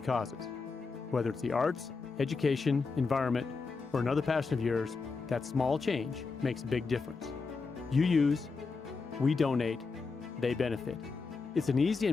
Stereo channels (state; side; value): quieter; right; 4.4 dB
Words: Whether it's the arts, education, environment, or another passion of yours, that small change makes a big difference. You use, we donate, they benefit. It's an easy